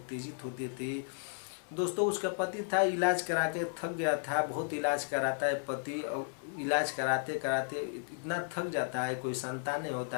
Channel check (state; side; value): silent; right; 55 dB below the other